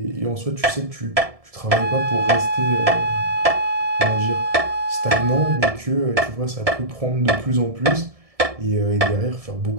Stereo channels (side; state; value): left; late; 1.7 ms